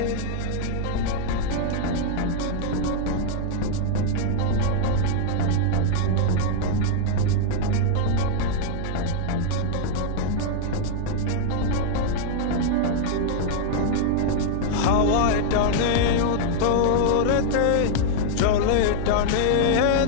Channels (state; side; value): different; both; correlation 0.00